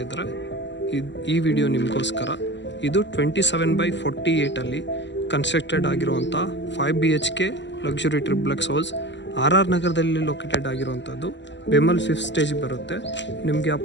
ಇದ್ದರೆ ಈ ವಿಡಿಯೋ ನಿಮಗೋಸ್ಕರ. ಇದು 27/48 ಕನ್ಸ್ಟ್ರಕ್ಟೆಡ್ ಆಗಿರುವಂಥ 5 BHK luxury triplex house RR ನಗರದಲ್ಲಿ ಲೊಕೇಟೆಡ್ ಆಗಿರುವಂಥದ್ದು. ಬೆಮಲ್ 5th ಸ್ಟೇಜ್ ಬರುತ್ತೆ. ನಿಮಗೆ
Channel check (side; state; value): right; late; 0.53 ms